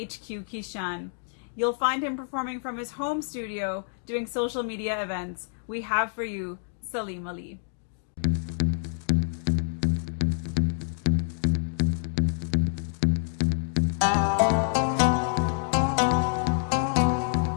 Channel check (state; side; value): silent; right; digital silence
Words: Kishan. You'll find him performing from his home studio, doing social media events. We have for you Salim Ali.